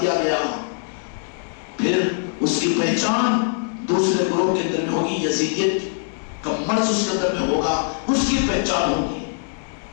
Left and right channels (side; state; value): right; silent; digital silence